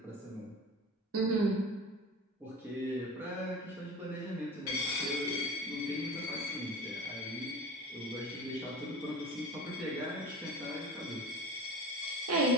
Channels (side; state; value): both; normal; correlation 0.34